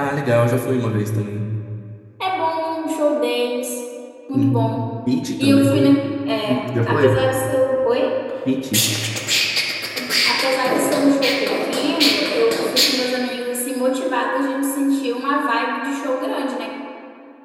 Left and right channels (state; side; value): identical; both; correlation 1.00